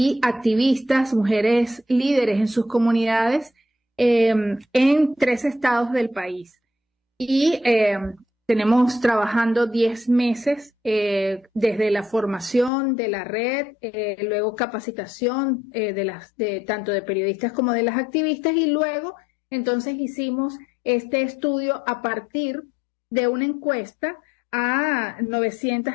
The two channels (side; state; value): right; drops out; at 12.7 s